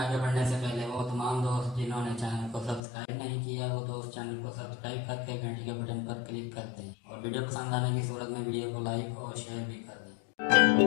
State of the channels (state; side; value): drops out; right; at 2.8 s